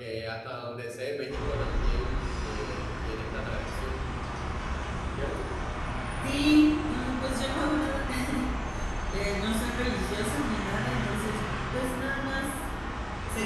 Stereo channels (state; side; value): identical; both; correlation 1.00